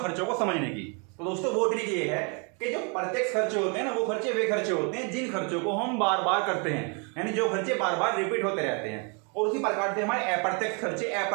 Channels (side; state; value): left; quieter; 35.4 dB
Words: को समझने की। तो दोस्तों वो ट्रिक ये है कि जो प्रत्यक्ष खर्चे होते हैं ना, वो खर्चे वे खर्चे होते हैं जिन खर्चों को हम बार बार करते हैं, यानी जो खर्चे बार बार रिपीट होते रहते हैं। और उसी प्रकार से हमारे